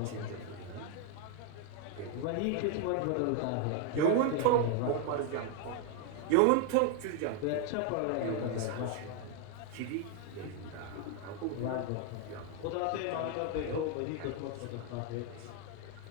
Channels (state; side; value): different; both; correlation 0.01